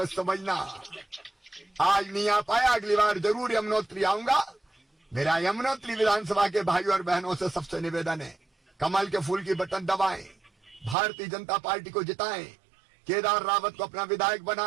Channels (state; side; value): drops out; left; at 11.0 s